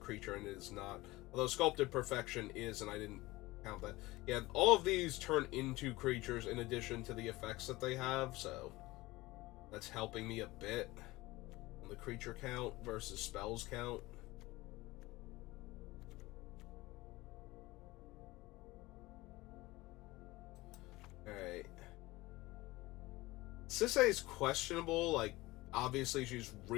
and it is not. Although Sculpted Perfection is, and I didn't count that. Yeah, all of these turn into creatures in addition to the effects that they have, so that's helping me a bit on the creature count versus spells count. Alright. Sisay is questionable, like, obviously she's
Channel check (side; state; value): right; quieter; 20.0 dB